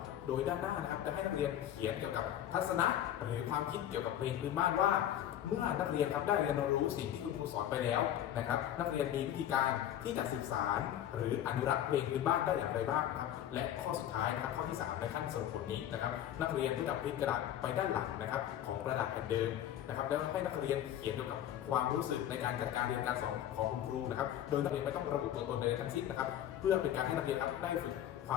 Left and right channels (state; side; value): quieter; right; 11.3 dB